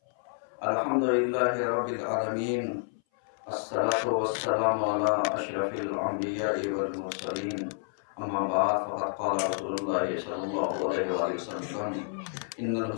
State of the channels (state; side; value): silent; right; 58 dB below the other